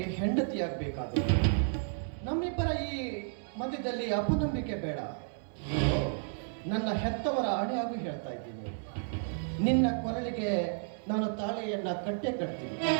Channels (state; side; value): silent; left; digital silence